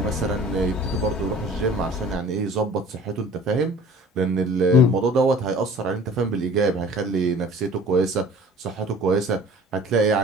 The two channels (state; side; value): normal; both; correlation 0.47